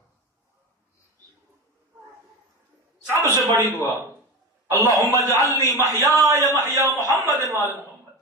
سب سے بڑی دعا اللہم اجعلنی محیای محیا محمد وآل محمد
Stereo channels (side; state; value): both; normal; correlation 0.25